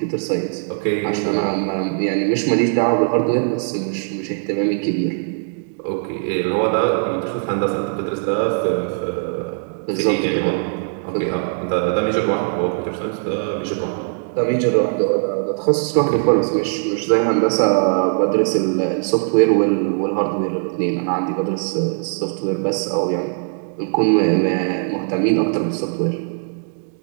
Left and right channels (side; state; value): left; silent; digital silence